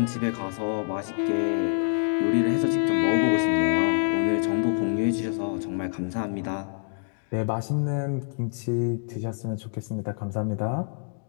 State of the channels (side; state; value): right; silent; digital silence